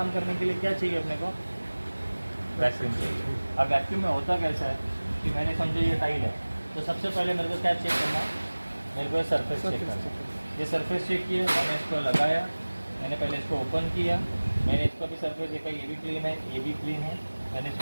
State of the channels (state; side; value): inverted; both; correlation -1.00